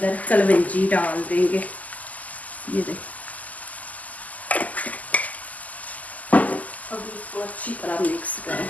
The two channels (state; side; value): late; right; 0.077 ms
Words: कलवंजी डाल देंगे। ये देखिए, अब इसको अच्छी तरह मिक्स करें